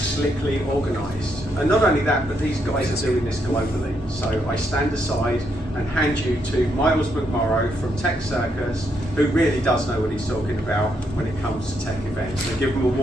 organised. And not only that, but these guys are doing this globally. So I stand aside and hand you to Miles McMorrow from Tech Circus, who really does know what he's talking about when it comes to tech events. So give him a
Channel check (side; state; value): both; normal; correlation 0.77